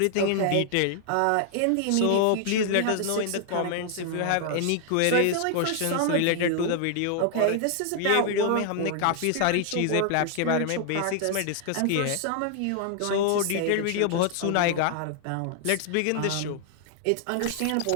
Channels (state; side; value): different; both; correlation 0.00